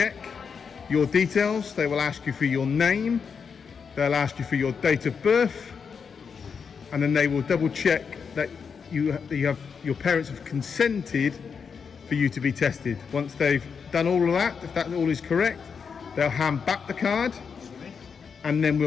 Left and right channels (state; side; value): quieter; right; 6.1 dB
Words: your details. They will ask you for your name, they'll ask you for your date of birth, and then they will double check that your parents have consented for you to be tested. Once they've done all of that, if that all is correct, they'll hand back the card, and then